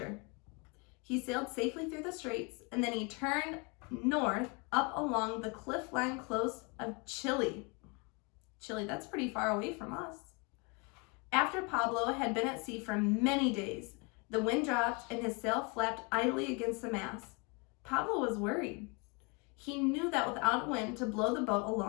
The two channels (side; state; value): right; quieter; 31.4 dB